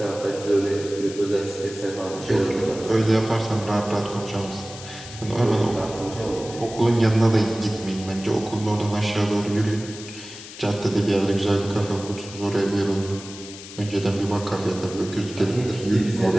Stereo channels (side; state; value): left; noise; hiss, 14 dB below the sound